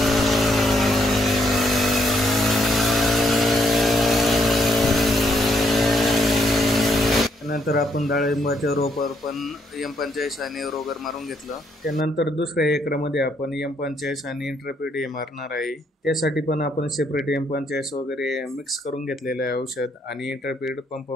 त्यानंतर आपण डाळिंबाच्या रोपावर पण M45 आणि रोगर मारून घेतलं. त्यानंतर दुसऱ्या एकरामध्ये आपण M45 आणि इंट्रापीड हे मारणार आहे. त्यासाठी पण आपण सेपरेट M45 वगैरे मिक्स करून घेतलेलं आहे औषध, आणि इंट्रापीड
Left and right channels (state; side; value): normal; both; correlation 0.73